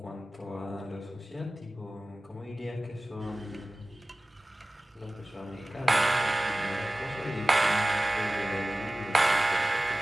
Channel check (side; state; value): both; normal; correlation 0.97